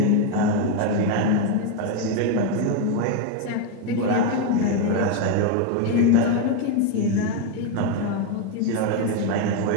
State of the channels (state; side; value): different; both; correlation 0.02